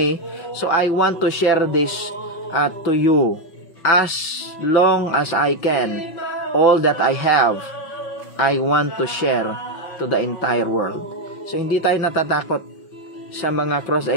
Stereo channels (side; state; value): right; late; 5.9 ms